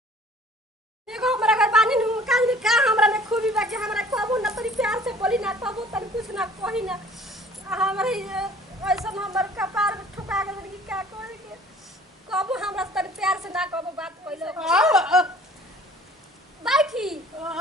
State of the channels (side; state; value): both; normal; correlation 0.51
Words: देखो हमरा घर पानी नु काज में का हमरा में खूबी बा के हमरा कहबो ना तनी प्यार से बोली ना कहबो तनी कुछ ना कही ना हमरे ऐसा हमर कपार में ठुका गेल कि का करे के कहबो हमरा तनी प्यार से ना कहबो बात पहले बैठी